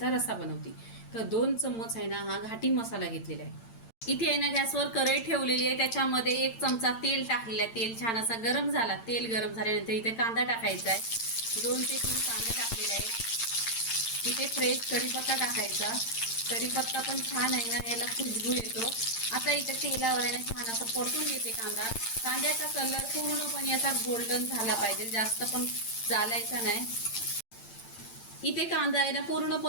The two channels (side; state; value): right; late; 8.8 ms